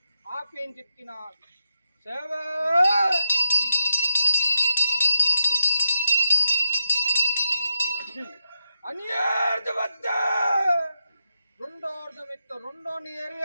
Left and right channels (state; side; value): inverted; both; correlation -0.86